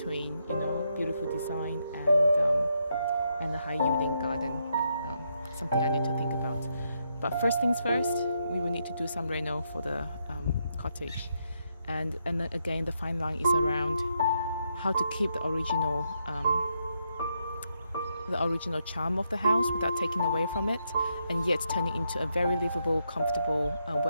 beautiful design and a high yielding garden. Something I need to think about. But first things first, we will need to do some reno for the cottage. And then again, the fine line is around how to keep the original charm of the house without taking away from it, and yet turn it into a very livable, comfortable,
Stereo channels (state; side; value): inverted; both; correlation -0.79